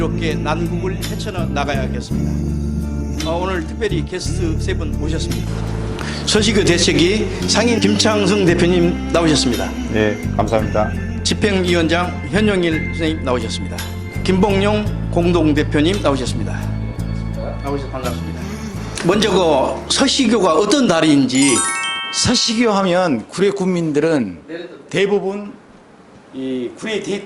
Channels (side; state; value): both; identical; correlation 1.00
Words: 난국을 헤쳐나가야겠습니다. 오늘 특별히 게스트 세 분 모셨습니다. 서식교 대책위 상임 김창승 대표님 나오셨습니다. 네, 감사합니다. 집행위원장 현영일 선생님 나오셨습니다. 김봉용 공동대표님 나오셨습니다. 나오셔서 반갑습니다. 먼저 그 서식교가 어떤 달인지. 서식교 하면 구례 국민들은 대부분 이 구례